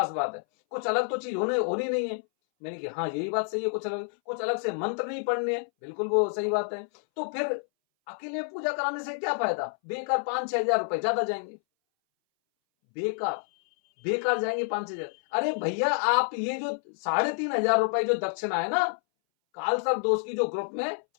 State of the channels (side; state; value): right; silent; 59 dB below the other